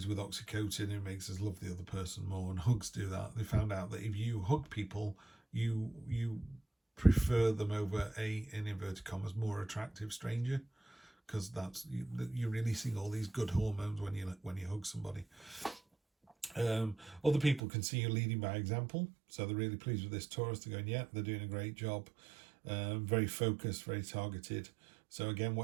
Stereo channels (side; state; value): left; drops out; at 17.6 s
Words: with oxytocin. It makes us love the other person more, and hugs do that. They found out that if you hug people, you prefer them over in inverted commas, more attractive stranger, because you're releasing all these good hormones when you hug somebody. Other people can see you leading by example, so they're really pleased with this Taurus. They're going, yeah, they're doing a great job. Very focused, very targeted. So again,